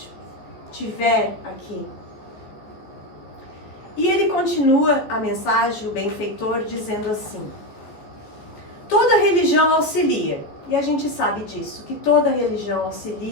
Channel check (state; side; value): late; right; 14 ms